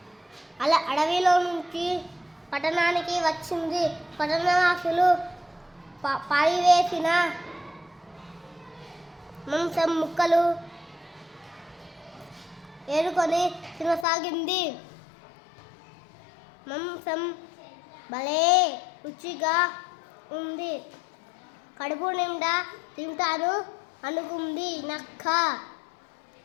అడవిలో నుంచి పట్టణానికి వచ్చింది. పట్టణవాసులు పారివేసిన మాంసం ముక్కలు ఏరుకొని తినసాగింది. మాంసం భలే రుచిగా ఉంది. కడుపు నిండా తింటాను అనుకుంది నక్క.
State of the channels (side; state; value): right; drops out; at 14.1 s